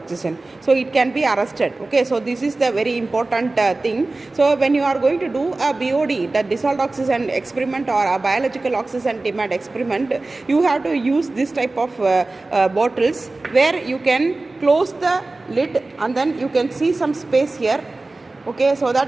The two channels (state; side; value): quieter; left; 3.2 dB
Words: So it can be arrested, okay. So this is the very important thing. So when you are going to do a BOD, the dissolved oxygen experiment or a biological oxygen demand experiment, you have to use this type of bottles where you can close the lid and then you can see some space here, okay, so that